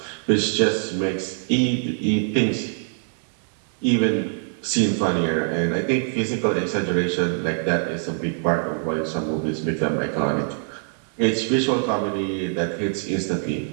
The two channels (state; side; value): silent; left; digital silence